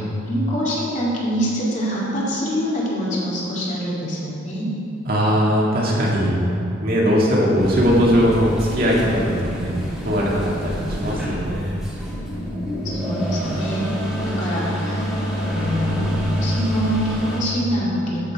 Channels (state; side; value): normal; both; correlation 0.64